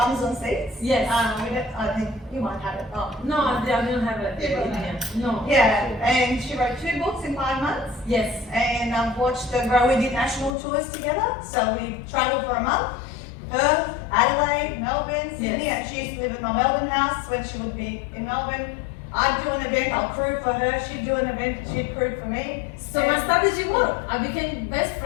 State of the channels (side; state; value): right; drops out; at 10.6 s